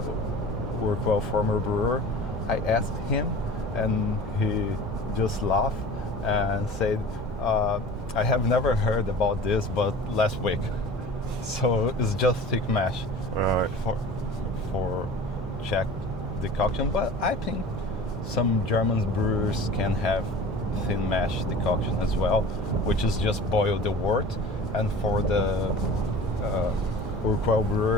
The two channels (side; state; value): both; normal; correlation 0.40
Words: Workwell former brewer, I asked him, and he just laughed and said, I have never heard about this, but last week. So it's just thick mash, Right. for Czech decoction. But I think some German brewers can have thin mash decoction as well, which is just boil the wort. And for the Urquell